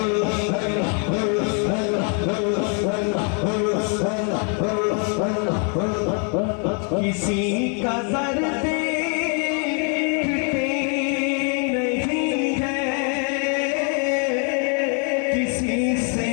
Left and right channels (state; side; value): quieter; right; 39.8 dB